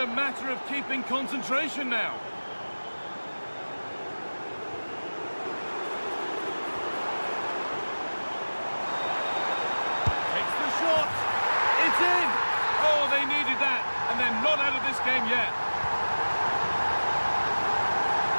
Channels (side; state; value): both; inverted; correlation -1.00